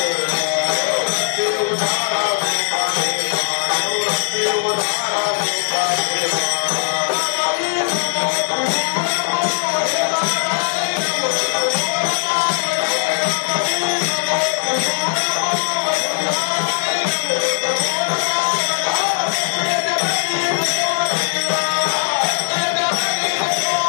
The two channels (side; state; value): right; silent; digital silence